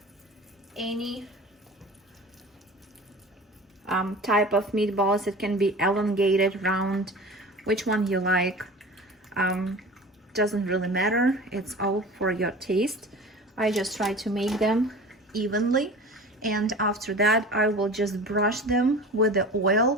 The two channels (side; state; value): both; normal; correlation 0.37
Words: any type of meatballs. It can be elongated, round, which one you like. Doesn't really matter, it's all for your taste. I just try to make them evenly, and after that I will just brush them with the